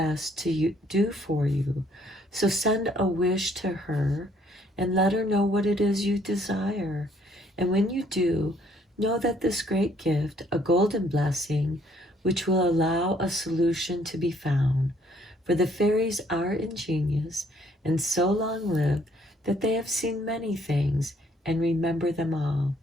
to do for you. So, send a wish to her and let her know what it is you desire. And when you do, know that this great gift, a golden blessing, which will allow a solution to be found. For the fairies are ingenious and so long lived that they have seen many things and remember them all.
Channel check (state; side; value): normal; both; correlation 0.64